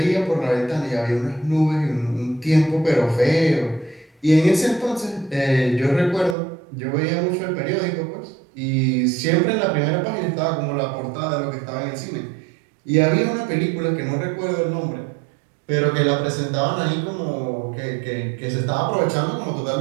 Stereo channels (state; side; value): drops out; left; at 6.4 s